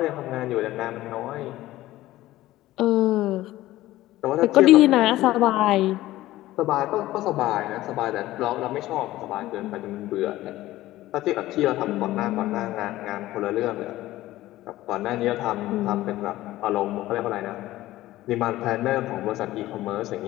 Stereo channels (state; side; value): quieter; right; 16.0 dB